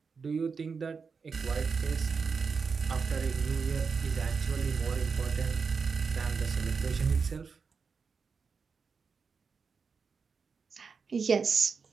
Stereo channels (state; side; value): quieter; left; 5.3 dB